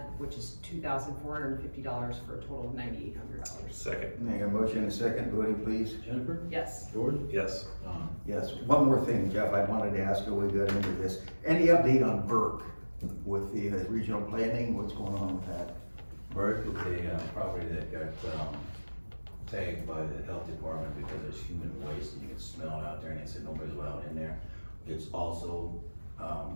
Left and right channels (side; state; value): both; inverted; correlation -1.00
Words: which is $2,450 for a total of $9,800. Second, Make a motion and a second, voting please. Jennifer, Yes. George, yes. Tom. Yes, one more thing, Jeff, I wanted to ask you, we got into this. Any update on Burke with the regional planning? What's going on with that? Burke is a property that got tagged by the health department because there's human waste and you can smell it out there, and they said nobody's allowed in there. It's also,